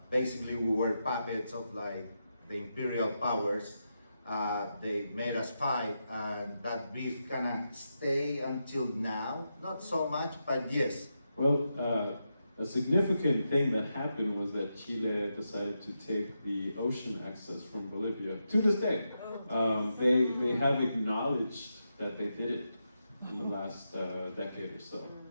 Basically, we were puppets of like the imperial powers. They made us fight, and that beef kind of stay until now. Not so much, but yes. Well, a significant thing that happened was that Chile decided to take the ocean access from Bolivia. To this day, they have acknowledged that they did it in the last decade or so.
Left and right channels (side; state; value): both; inverted; correlation -0.86